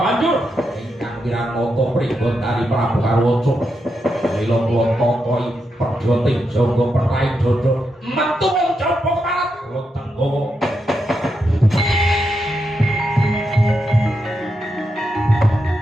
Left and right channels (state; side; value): normal; both; correlation 0.84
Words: banjur Wiranata pribon dari Prabu Harwaca mila kula tokohi perjoting jaga perai dodo metu wong jaba keparat kula tenggawa